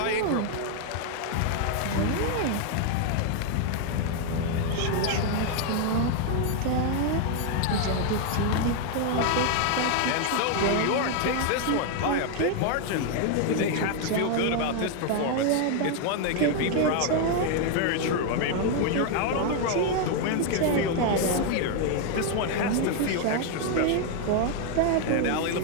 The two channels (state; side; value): different; both; correlation 0.01